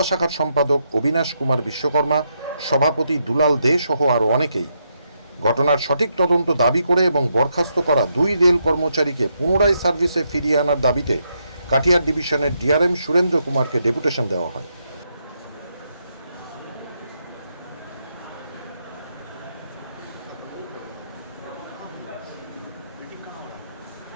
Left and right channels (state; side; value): inverted; both; correlation -0.80